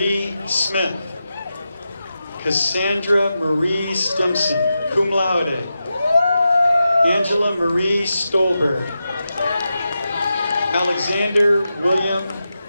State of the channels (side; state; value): both; inverted; correlation -0.90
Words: Smith. Cassandra Marie Stimson, cum laude. Angela Marie Stolberg. Alexander William